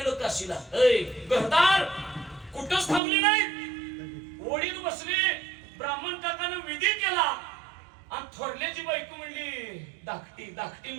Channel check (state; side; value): drops out; left; at 3.0 s